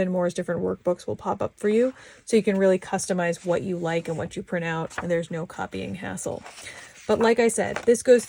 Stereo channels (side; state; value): both; identical; correlation 1.00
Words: different workbooks will pop up for you. So you can really customize what you like and what you print out, and there's no copying hassle. But like I said, this goes